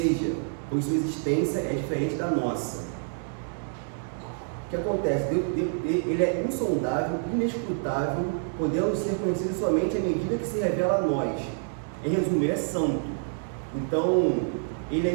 pois sua existência é diferente da nossa. O que acontece? Ele é insondável, inescrutável, podendo ser conhecido somente à medida que se revela a nós. Em resumo, ele é santo. Então, ele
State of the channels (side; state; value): left; silent; digital silence